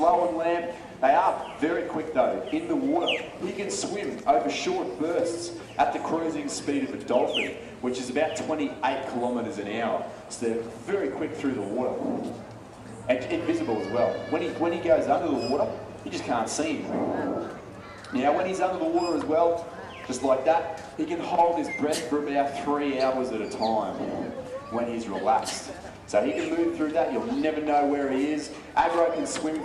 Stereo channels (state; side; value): identical; both; correlation 1.00